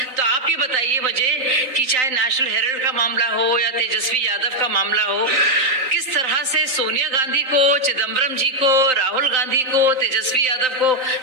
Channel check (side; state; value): left; late; 3.8 ms